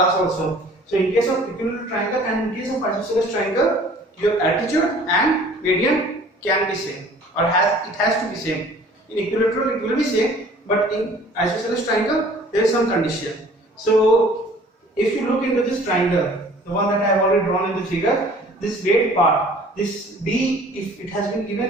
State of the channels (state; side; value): normal; both; correlation 0.51